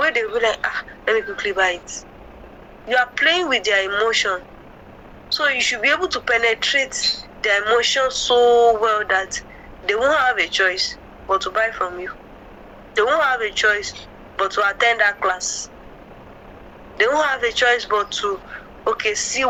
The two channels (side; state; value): both; identical; correlation 1.00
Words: they will be like, let me quickly buy it. You are playing with their emotion. So you should be able to penetrate their emotion so well that they won't have a choice but to buy from you. They won't have a choice but to attend that class. They won't have a choice but to, see